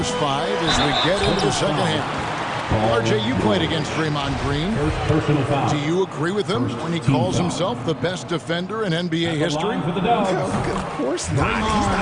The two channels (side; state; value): both; identical; correlation 1.00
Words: 5 as we get into the second half. RJ, you played against Draymond Green. Do you agree with him when he calls himself the best defender in NBA history? Of course not. He's